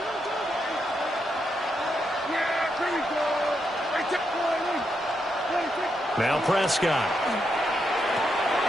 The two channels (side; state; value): both; normal; correlation 0.82